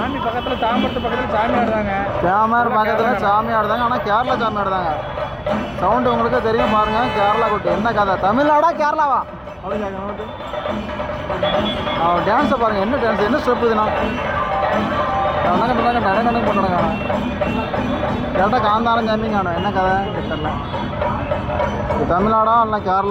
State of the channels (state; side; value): identical; both; correlation 1.00